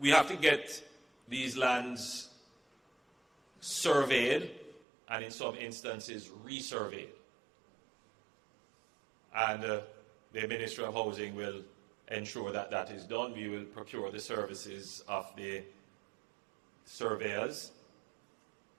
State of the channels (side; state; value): left; drops out; at 4.8 s